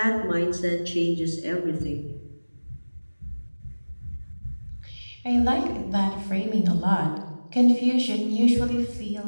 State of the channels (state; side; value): inverted; both; correlation -1.00